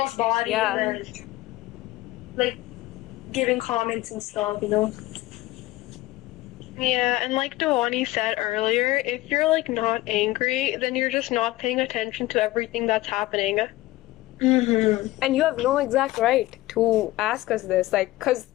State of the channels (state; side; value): quieter; right; 17.8 dB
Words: body, Yeah. and then, like giving comments and stuff. Yeah, and like Dewani said earlier, if you're like not angry, then you're just not paying attention to everything that's happening. And you have no exact right to ask us this, like, because